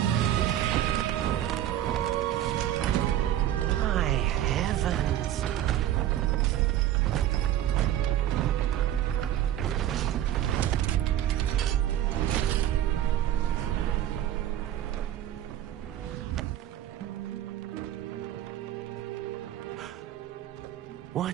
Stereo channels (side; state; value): left; quieter; 12.1 dB